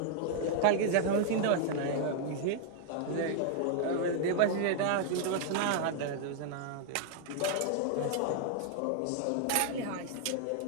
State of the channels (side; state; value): both; different; correlation 0.00